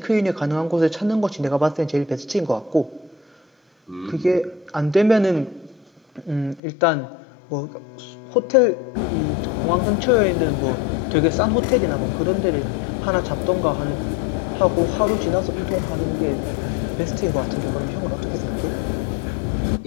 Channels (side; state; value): right; drops out; at 6.6 s